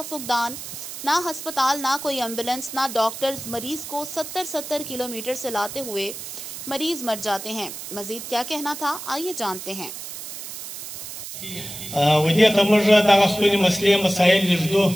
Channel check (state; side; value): noise; right; hiss, 10 dB below the sound